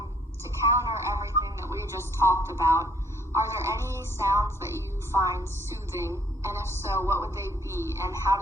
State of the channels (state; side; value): normal; both; correlation 0.64